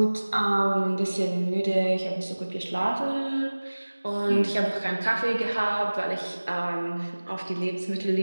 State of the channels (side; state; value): both; inverted; correlation -1.00